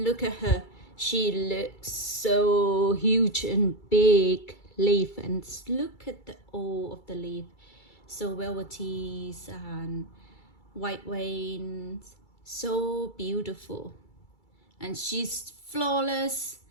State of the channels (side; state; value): right; late; 2.3 ms